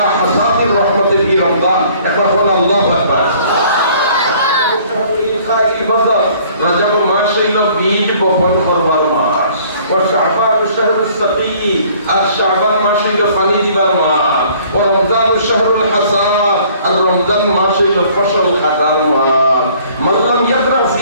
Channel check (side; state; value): both; inverted; correlation -0.56